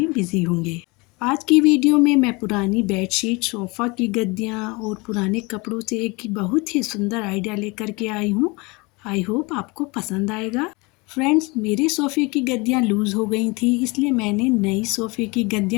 बिजी होंगे। आज की वीडियो में मैं पुरानी बेडशीट, सोफ़ा की गद्दियाँ और पुराने कपड़ों से एक बहुत ही सुंदर आइडिया लेकर के आई हूँ। आई होप आपको पसंद आएगा। फ्रेंड्स, मेरे सोफ़े की गद्दियाँ लूज़ हो गई थी, इसलिए मैंने नई सोफ़े की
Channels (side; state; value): right; quieter; 26.5 dB